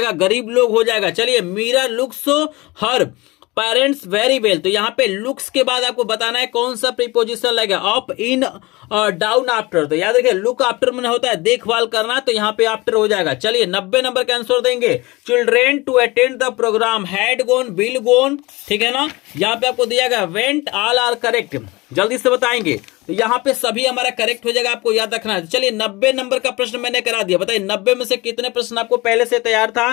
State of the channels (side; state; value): right; quieter; 22.6 dB